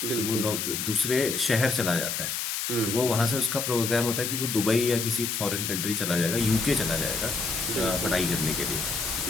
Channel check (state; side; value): noise; left; hiss, 2 dB below the sound